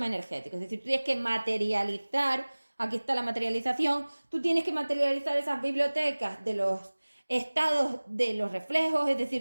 energético. Es decir, tú tienes que materializar, aquí está la materialización, tú tienes que materializar esas bibliotecas de los estados de los reflejos, es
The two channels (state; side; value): inverted; both; correlation -1.00